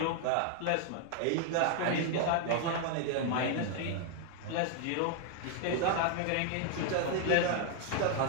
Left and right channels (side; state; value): both; different; correlation 0.00